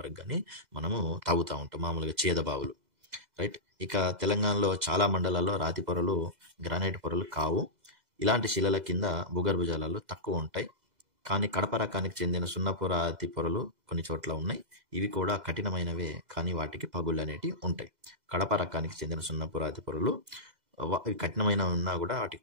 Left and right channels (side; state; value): left; late; 2.0 ms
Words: కానీ మనము తవ్వుతూ ఉంటాం, మామూలుగా చేద బావులు, రైట్. ఇక తెలంగాణలో చాలా మండలాల్లో రాతి పొరలు, గ్రానైట్ పొరలు కావు. ఇలాంటి శిలల కింద భూగర్భ జలాలు తక్కువ ఉంటాయి. కానీ కడప రకానికి చెందిన సున్నపు రాతి పొరలు కొన్ని చోట్ల ఉన్నాయి. ఇవి కూడా కఠినమైనవే, కానీ వాటికి పగుళ్ళు అనేటివి ఉంటాయి. కడప రకానికి చెందిన సున్నపు రాతి పొరలు కఠినమైన ఉన్నా కూడా వాటికి